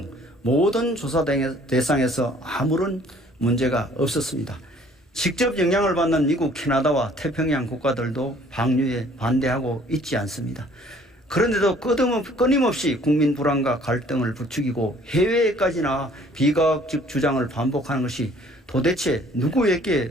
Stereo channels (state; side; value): normal; both; correlation 0.57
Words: 모든 조사 대상에서 아무런 문제가 없었습니다. 직접 영향을 받는 미국, 캐나다와 태평양 국가들도 방류에 반대하고 있지 않습니다. 그런데도 끊임없이 국민 불안과 갈등을 부추기고 해외에까지나 비과학적 주장을 반복하는 것이 도대체